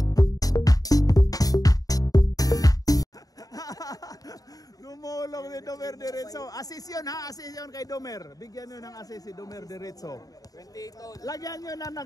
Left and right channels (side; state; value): right; late; 0.18 ms